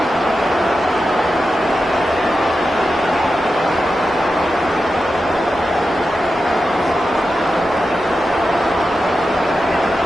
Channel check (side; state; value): both; normal; correlation 0.90